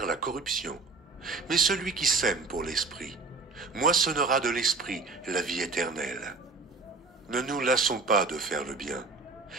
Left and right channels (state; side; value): quieter; left; 4.1 dB